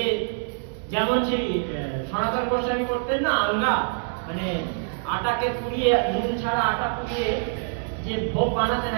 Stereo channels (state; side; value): silent; left; digital silence